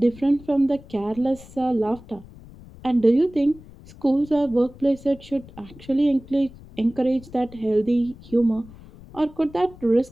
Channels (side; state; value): left; noise; rumble, 20 dB below the sound